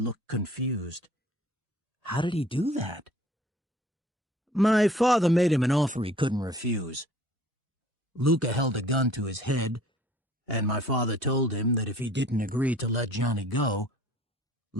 confused. How did he do that? My father made him an offer he couldn't refuse. Luca held a gun to his head, and my father told him that if he didn't agree to let Johnny go,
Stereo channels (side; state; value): both; normal; correlation 0.53